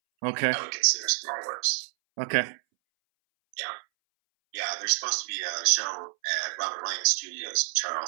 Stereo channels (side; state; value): left; silent; 59 dB below the other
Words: Okay. I would consider small works. Okay. Yeah. Yeah, there's supposed to be a show at Robert Lang Studios in